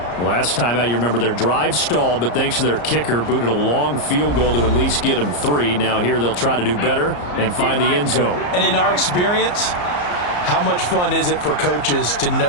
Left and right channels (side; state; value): right; late; 34 ms